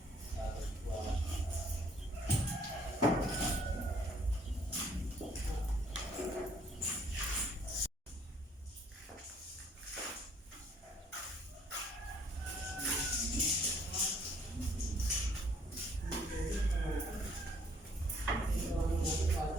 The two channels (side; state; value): both; normal; correlation 0.62